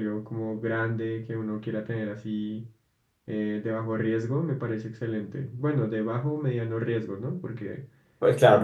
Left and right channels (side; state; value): both; identical; correlation 1.00